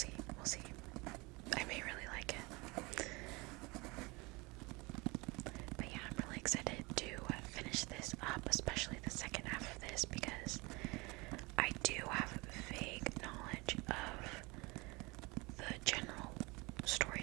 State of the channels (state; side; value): quieter; left; 25.3 dB